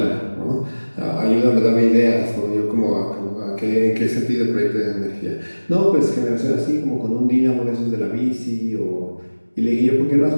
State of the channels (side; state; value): both; inverted; correlation -1.00